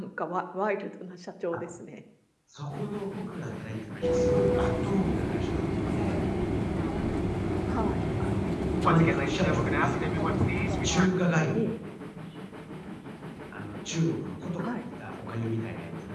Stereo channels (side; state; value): both; identical; correlation 1.00